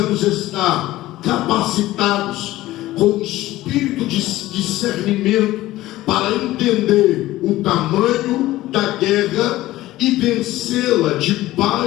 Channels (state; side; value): quieter; right; 16.4 dB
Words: estar capacitados com o espírito de discernimento para entender o tamanho da guerra e vencê-la